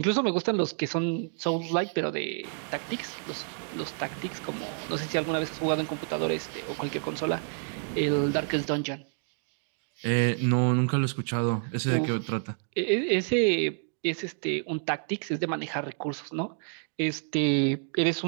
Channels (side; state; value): left; silent; 59 dB below the other